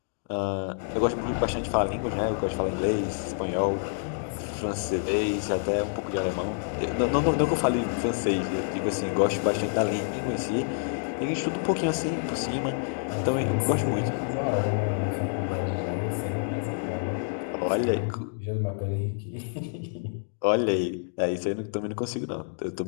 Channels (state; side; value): silent; right; digital silence